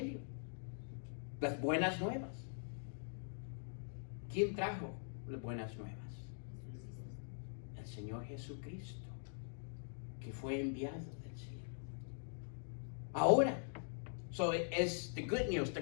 las buenas nuevas. ¿Quién trajo las buenas nuevas? El Señor Jesucristo, que fue enviado del cielo. Ahora, so es the good news, the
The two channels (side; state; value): right; silent; digital silence